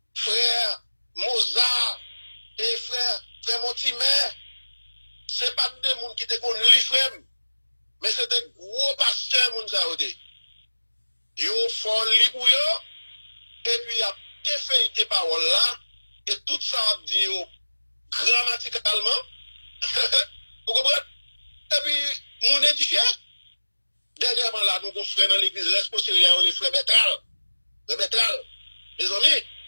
frère Mozart, et frère Montimer. C'est pas des moun qui te qu'on lit, frère, mais c'était gros pasteurs, moun ça ôté. Yo font li pour yo, et puis y a te fait tes paroles là, et tout ça a dit yo grammaticalement, vous comprenez? Et puis, mon édifié, dernièrement là, nous avons frère dans l'église, responsable, les frères Bétral, mes amis,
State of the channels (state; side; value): inverted; both; correlation -1.00